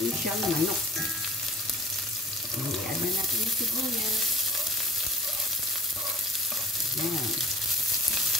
siyang manok. I-add na natin yung sibuyas. Yan.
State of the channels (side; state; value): both; normal; correlation 0.43